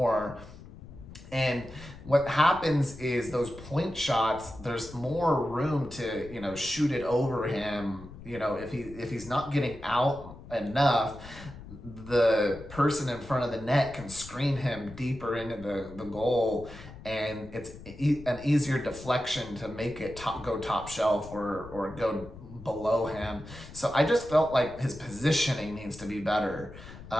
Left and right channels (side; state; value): left; noise; rumble, 16 dB below the sound